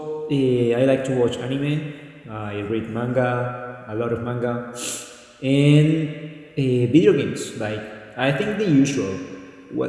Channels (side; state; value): both; identical; correlation 1.00